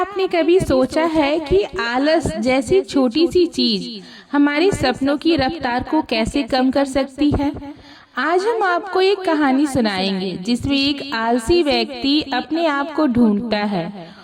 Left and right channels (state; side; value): identical; both; correlation 1.00